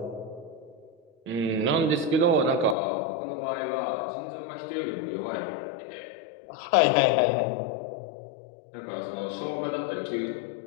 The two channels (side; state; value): right; drops out; at 2.8 s